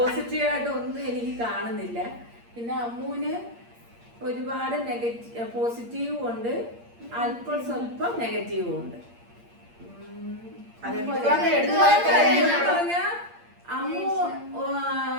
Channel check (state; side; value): late; left; 8.6 ms